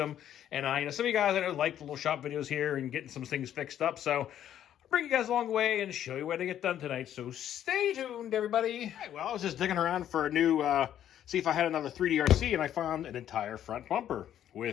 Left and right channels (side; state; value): right; quieter; 10.8 dB